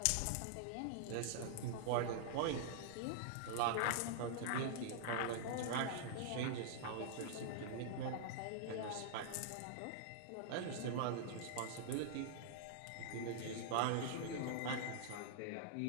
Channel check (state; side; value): different; both; correlation -0.01